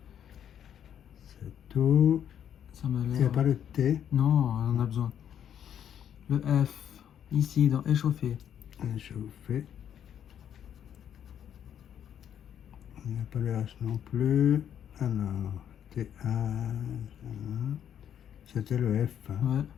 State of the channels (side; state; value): right; quieter; 9.4 dB